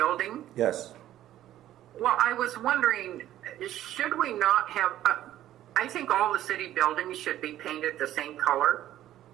Yes. Well, I was wondering, should we not have, I think all the city buildings should be painted the same color.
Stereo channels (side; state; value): left; quieter; 12.9 dB